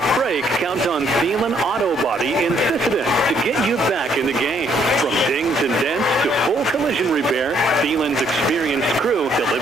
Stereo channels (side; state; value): both; normal; correlation 0.68